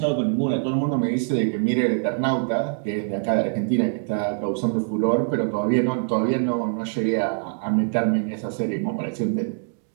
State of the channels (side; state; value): left; silent; digital silence